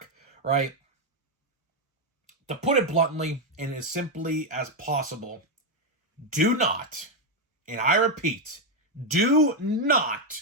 right? To put it bluntly and as simply as possible, do not, and I repeat, do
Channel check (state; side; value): normal; both; correlation 0.04